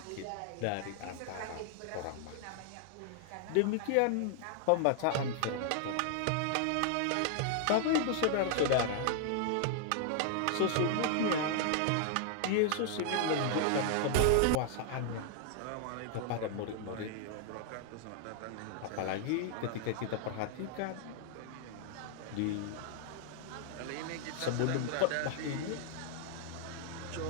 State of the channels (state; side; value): different; both; correlation 0.00